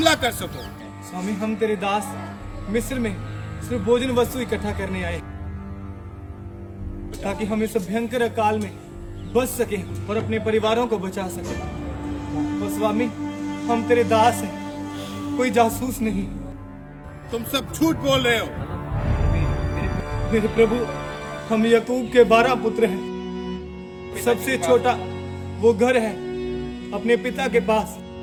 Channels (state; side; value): identical; both; correlation 1.00